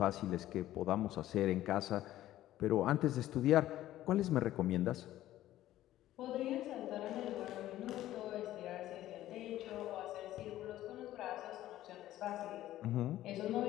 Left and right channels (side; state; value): right; quieter; 14.1 dB